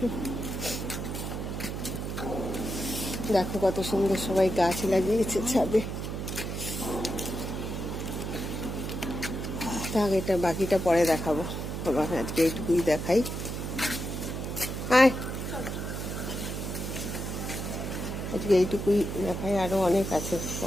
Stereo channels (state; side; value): noise; right; hum, 5 dB below the sound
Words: দেখো কত সুন্দর সবাই গাছ লাগিয়েছে ছাদে। থাক, এটা বাকিটা পরে দেখাবো। আবার আজকে এইটুকুই দেখাই। আজকে এইটুকুই দেখাই, আরো অনেক আছে,